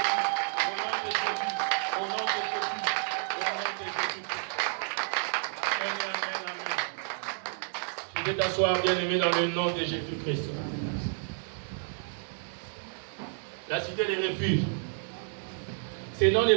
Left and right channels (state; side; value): silent; left; 58 dB below the other